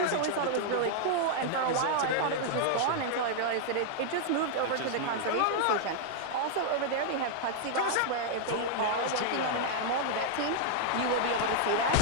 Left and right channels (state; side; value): different; both; correlation -0.01